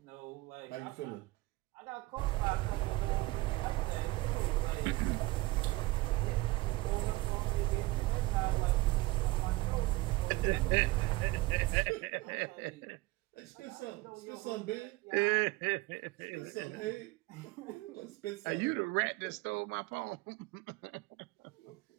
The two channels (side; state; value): left; quieter; 20.5 dB